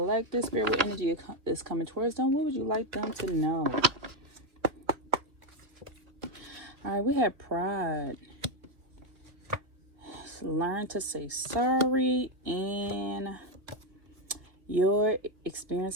Spirit energy is coming towards them. What would you like them to know? All right, we have pride. Learn to say sorry and your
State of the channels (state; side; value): late; left; 2.4 ms